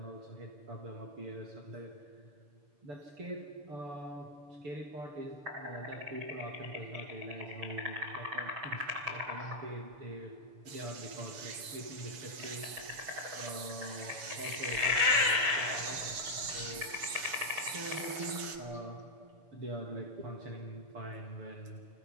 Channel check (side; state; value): left; late; 6.9 ms